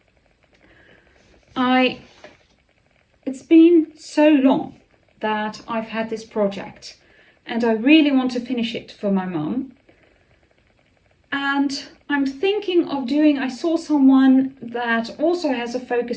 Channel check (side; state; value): both; identical; correlation 1.00